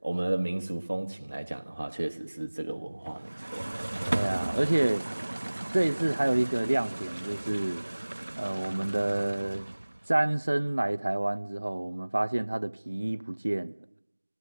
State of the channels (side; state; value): both; inverted; correlation -1.00